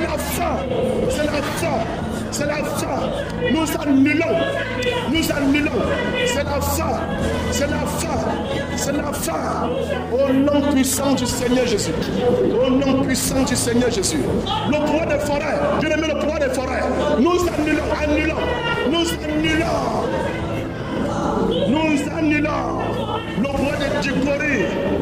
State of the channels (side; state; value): both; identical; correlation 1.00